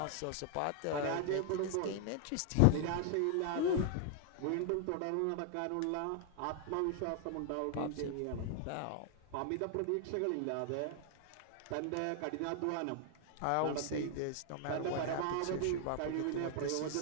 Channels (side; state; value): both; different; correlation 0.00